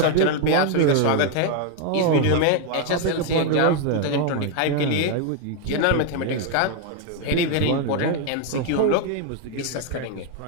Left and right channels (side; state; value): both; different; correlation 0.00